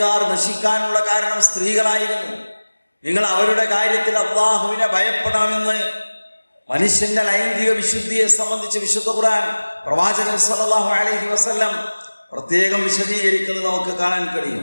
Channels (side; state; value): both; inverted; correlation -1.00